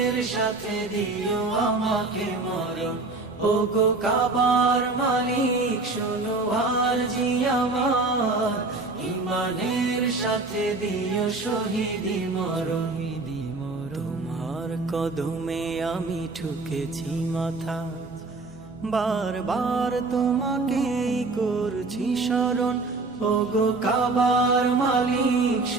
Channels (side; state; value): left; quieter; 3.5 dB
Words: সাথে দিও আমাকে মরণ। ওগো কাবার মালিক শোনো আরজি আমার, ইমানের সাথে দিও শহীদি মরণ। তোমার কদমে আমি ঠুকেছি মাথা, বারবার তোমাকেই করছি স্মরণ। ওগো কাবার মালিক